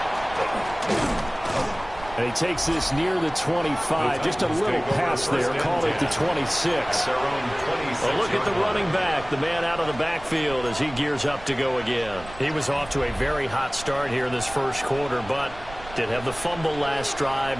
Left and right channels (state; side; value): noise; right; rumble, 16 dB below the sound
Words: And he takes this near the 25. Just a little pass there. Call it the 26. Well, look at the running back, the man out of the backfield as he gears up to go again. He was off to a very hot start here in this first quarter, but did have the fumble last drive.